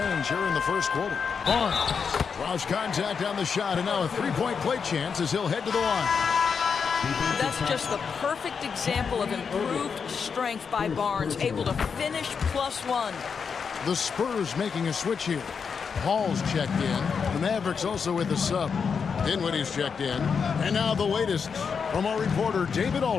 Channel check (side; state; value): right; quieter; 6.1 dB